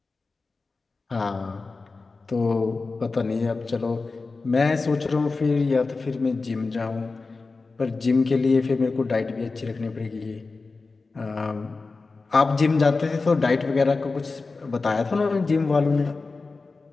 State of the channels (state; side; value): quieter; right; 3.9 dB